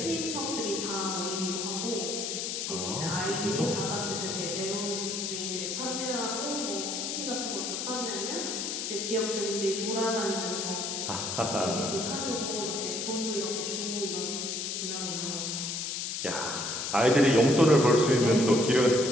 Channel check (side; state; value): left; noise; hiss, 3 dB below the sound